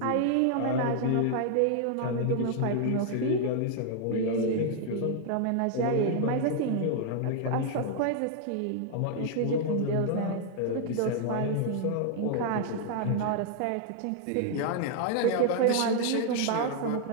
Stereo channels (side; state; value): both; different; correlation 0.00